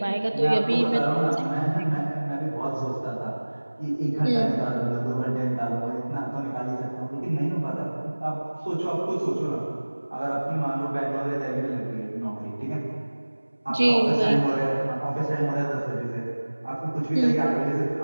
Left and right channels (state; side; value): inverted; both; correlation -1.00